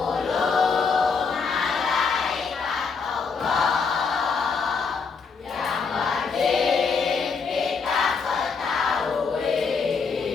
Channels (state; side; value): quieter; right; 5.2 dB